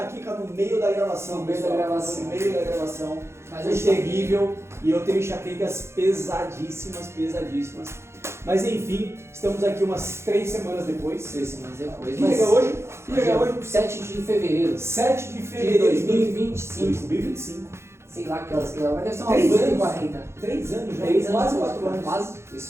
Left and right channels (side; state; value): left; late; 0.13 ms